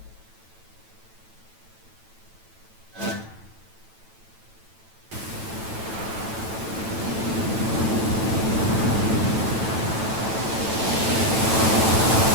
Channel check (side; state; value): left; late; 9.0 ms